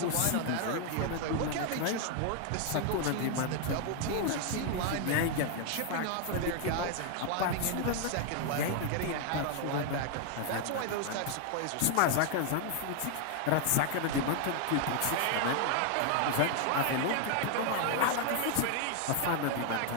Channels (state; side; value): different; both; correlation 0.00